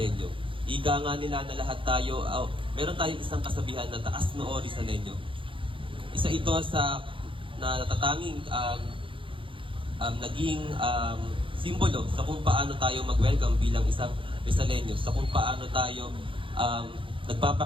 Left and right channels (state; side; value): late; left; 0.25 ms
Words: Ika nga nila na lahat tayo, meron tayong isang kasabihan na taas noo Rizaleño. Isa ito sa natatanging naging simbolo sa kung paano tayo mag-welcome bilang isang Rizaleño, sa kung paano tayo